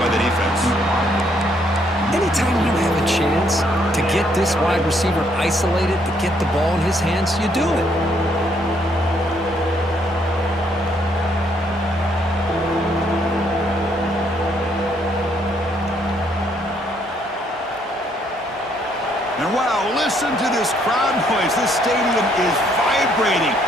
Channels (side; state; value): both; normal; correlation 0.70